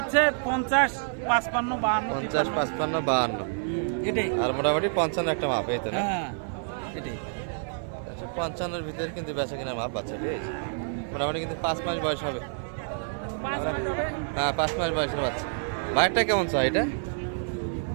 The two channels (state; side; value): silent; left; digital silence